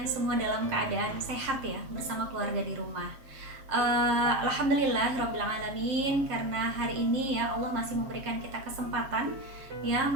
semua dalam keadaan sehat ya, bersama keluarga di rumah. Alhamdulillah Rabbil Alamin, karena hari ini ya Allah masih memberikan kita kesempatan ya,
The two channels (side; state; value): left; late; 7.5 ms